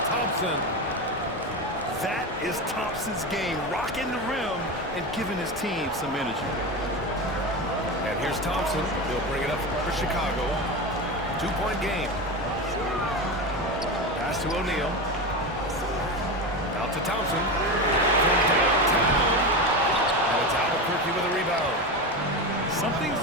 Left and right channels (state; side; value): normal; both; correlation 0.20